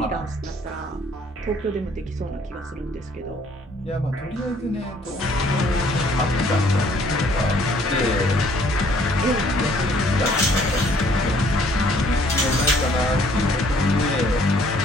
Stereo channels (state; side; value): normal; both; correlation 0.61